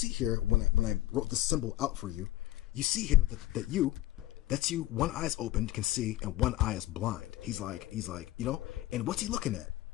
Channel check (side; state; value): right; quieter; 15.7 dB